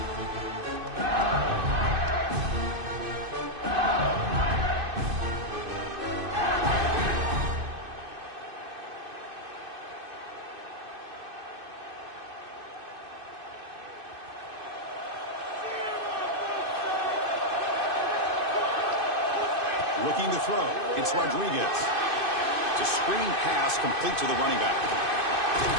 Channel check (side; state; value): left; late; 2.5 ms